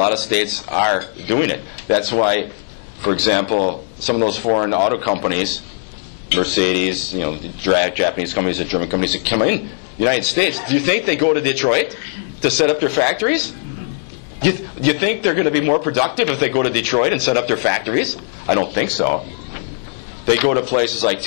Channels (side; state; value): right; silent; 67 dB below the other